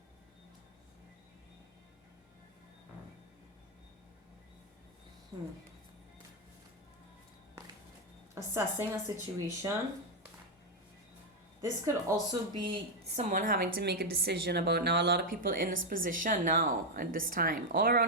Assessing a situation. This could also be someone having to make a decision about, now a lot of people in this position now at this time all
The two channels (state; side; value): normal; both; correlation 0.03